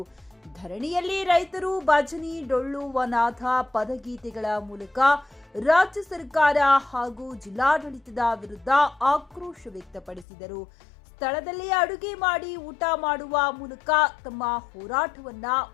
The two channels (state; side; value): drops out; right; at 10.2 s